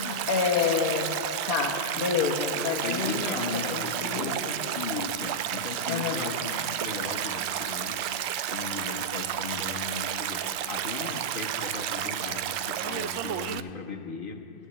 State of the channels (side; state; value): left; late; 2.5 ms